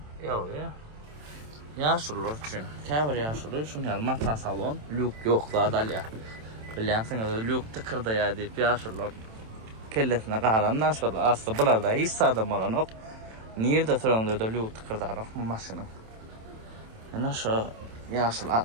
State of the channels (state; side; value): late; left; 27 ms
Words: Yok ya. Yaşlılar için. Kevr yaşlılar için mata salon. Lük yok da dalya. Biliyorsunuz lük tıkırda ya deyip yaşlılar. Kellesine qalanlar şöyle. Aslında bunlarda hiç adam olan yok. Nerede sorunlu da lük tıkırda yok bu maşının. Yani şu yaşlı